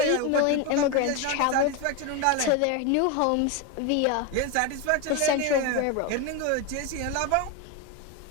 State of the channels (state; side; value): different; both; correlation 0.03